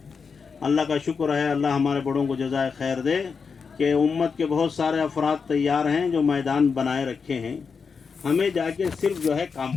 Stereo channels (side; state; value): right; quieter; 5.5 dB